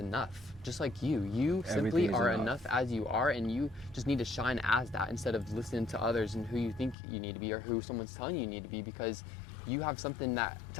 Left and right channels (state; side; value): drops out; right; at 7.0 s